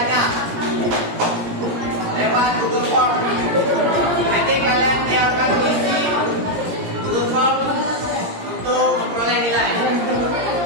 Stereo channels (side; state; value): left; late; 17 ms